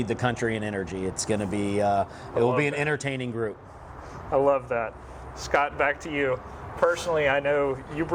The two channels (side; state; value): both; identical; correlation 1.00